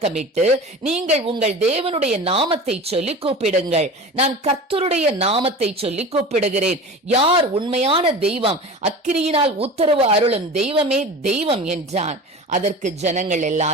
நீங்கள் உங்கள் தேவனுடைய நாமத்தை சொல்லி கூப்பிடுங்கள், நான் கர்த்தருடைய நாமத்தை சொல்லி கூப்பிடுகிறேன், யார் உண்மையான தெய்வம், அக்கினியினால் உத்தரவு அருளும் தெய்வமே தெய்வம் என்றான். அதற்கு ஜனங்கள்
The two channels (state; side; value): normal; both; correlation 0.34